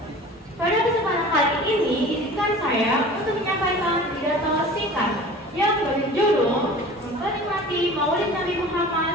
Pada kesempatan kali ini, izinkan saya untuk menyampaikan pidato singkat yang berjudul Memperingati Maulid Nabi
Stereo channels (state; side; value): normal; both; correlation 0.41